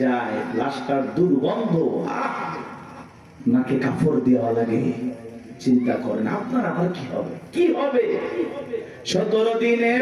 যায়, লাশটার দুর্গন্ধ, নাকে কাপড় দেওয়া লাগে। চিন্তা করেন আপনার আমার কি হবে, কি হবে? 17 দিনে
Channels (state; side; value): identical; both; correlation 1.00